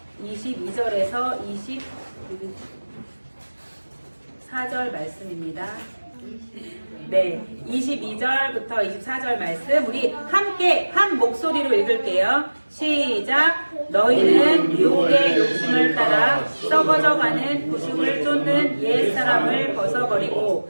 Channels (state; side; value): inverted; both; correlation -1.00